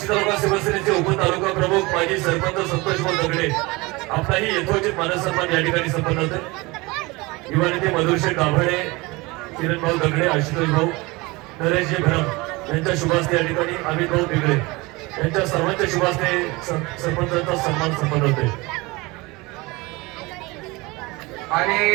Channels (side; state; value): left; quieter; 23.6 dB